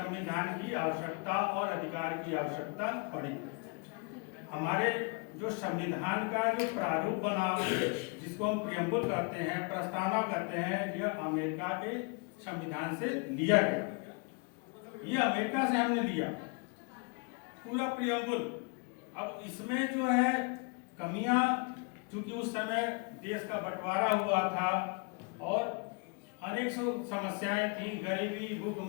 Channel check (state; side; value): quieter; right; 33.0 dB